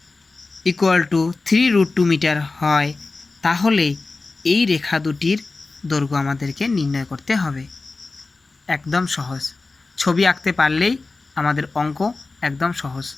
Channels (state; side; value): quieter; right; 3.7 dB